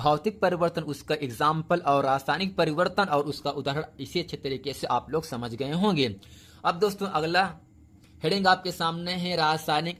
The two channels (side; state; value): both; identical; correlation 1.00